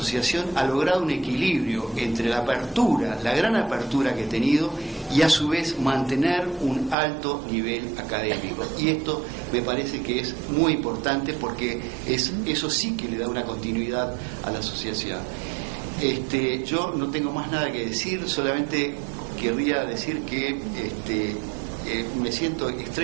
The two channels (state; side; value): drops out; left; at 7.0 s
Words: ha logrado un equilibrio entre la apertura, la gran apertura que ha tenido, y a su vez mantener un alto nivel académico. Y esto me parece que es muy importante porque eso sí que le da una continuidad a la asociación. Yo no tengo más nada que decir, solamente querría decir que me siento